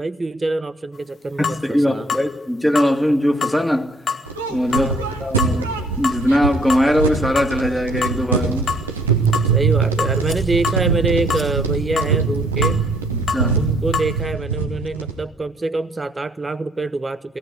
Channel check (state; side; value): normal; both; correlation 0.63